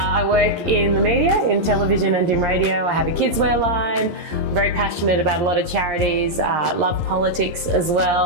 work in the media, in television and in radio. I have a kids wear line. I'm very passionate about a lot of charities. Love politics as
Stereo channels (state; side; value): late; left; 11 ms